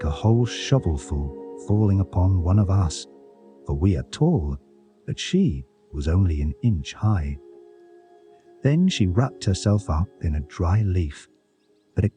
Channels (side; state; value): both; identical; correlation 1.00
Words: a whole shovelful falling upon one of us, for we are tall, but she was only an inch high. Then she wrapped herself up in a dry leaf, but